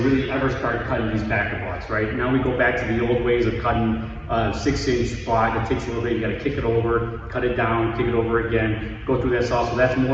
ever start cutting these backer blocks, right? Now we go back to the old ways of cutting a 6-inch block. It takes a little bit, you gotta kick it over, cut it down, kick it over again, go through that saw. So that's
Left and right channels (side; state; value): both; identical; correlation 1.00